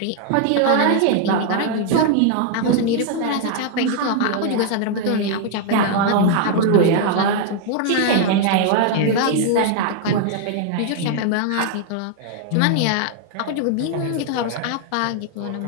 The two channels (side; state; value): both; different; correlation 0.00